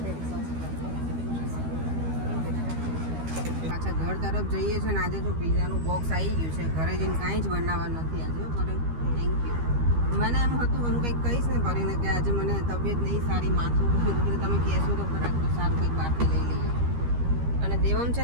પાછા ઘર તરફ જઈએ છીએ ને. આજે જો પિઝાનું બોક્સ આવી ગયું છે. ઘરે જઈને કાંઈ જ બનાવવા નથી આજે. કરે થેન્ક યુ. મને એમ હતું હું કંઈક કહીશ ને કરીને કે આજે મને તબિયત નહીં સારી, માથું કીધું તમે કહેશો તો ખરા તો સારું કંઈક બહારથી લઈ લઈએ. અને દેવમ છે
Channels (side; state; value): left; late; 13 ms